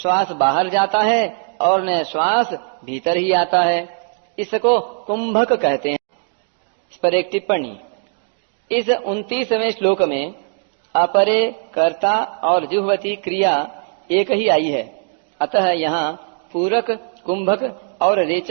बाहर जाता है और न श्वास भीतर ही आता है। इसको कुंभक कहते हैं। इस पर एक टिप्पणी। इस 29वें श्लोक में अपरे कर्ता और जुह्वति क्रिया एक ही आई है, अतः यहाँ पूरक कुंभक और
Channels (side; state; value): left; silent; 58 dB below the other